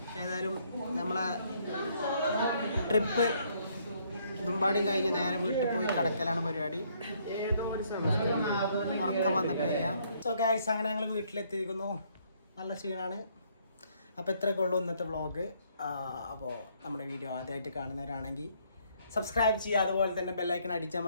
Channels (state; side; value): inverted; both; correlation -0.68